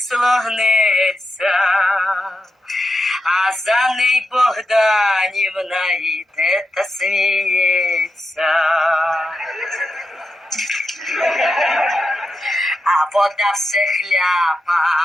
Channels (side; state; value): both; normal; correlation 0.87